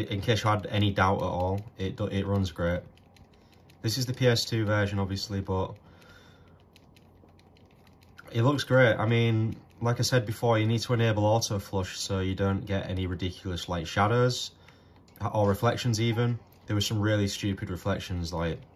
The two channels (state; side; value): identical; both; correlation 1.00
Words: case you had any doubt at all, it runs great. This is the PS2 version, obviously, but it looks great. I mean, like I said before, you need to enable auto flush so you don't get any ridiculous like shadows or reflections even. There were some really stupid reflections like